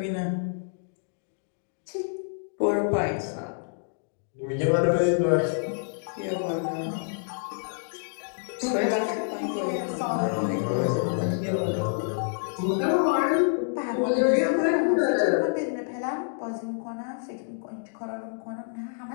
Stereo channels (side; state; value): right; silent; digital silence